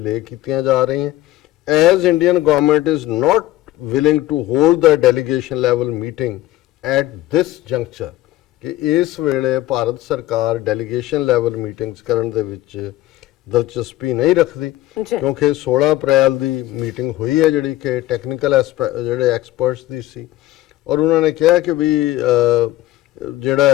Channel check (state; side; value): quieter; right; 15.7 dB